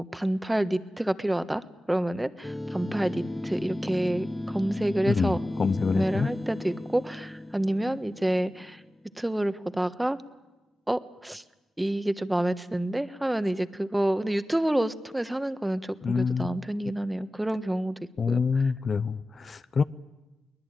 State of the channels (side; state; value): both; normal; correlation 0.95